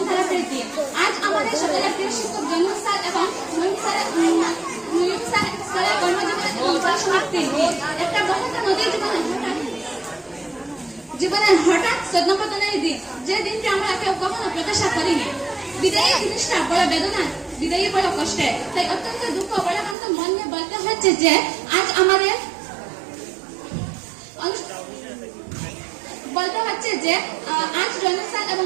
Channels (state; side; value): drops out; left; at 20.0 s